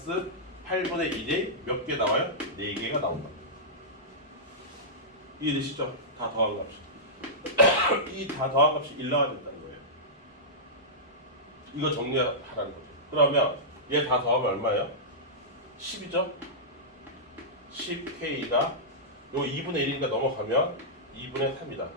8분의 1이 몇 개 나와요? 4개가 나온다. 이해되시죠? 다 더한 값이. 이 다 더한 값이 1 나와야 된다는 거예요. 이거 정리하라는 거죠. 그러면 얘 다 더하면 얼마예요? 10이죠? 10K가 요 2분의 1이니까 넘어가면 2분의 3이다.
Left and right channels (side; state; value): both; normal; correlation -0.14